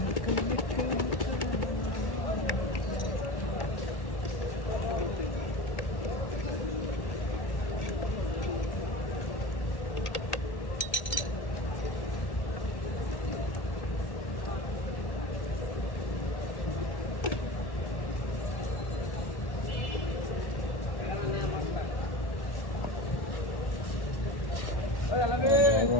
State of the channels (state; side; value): late; right; 1.1 ms